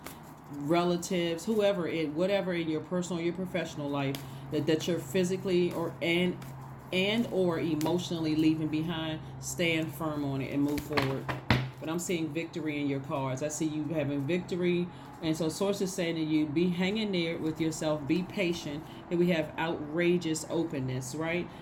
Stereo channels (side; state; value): both; identical; correlation 1.00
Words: relatives, whatever in your personal, your professional life, that you're physically or emotionally leaving behind. Stand firm on it and move forward. But I'm seeing victory in your cards. I see you having victory. And so source is saying to you, be hanging there with yourself, be patient. And we have outrageous openness, right?